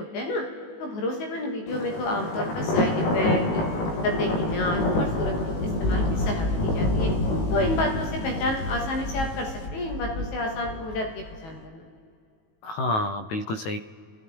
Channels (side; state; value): right; late; 19 ms